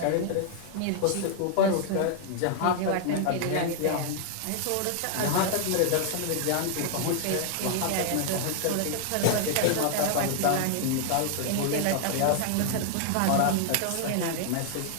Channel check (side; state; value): both; different; correlation 0.00